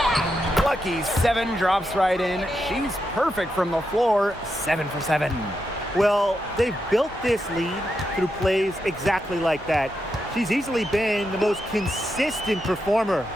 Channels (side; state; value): both; normal; correlation 0.85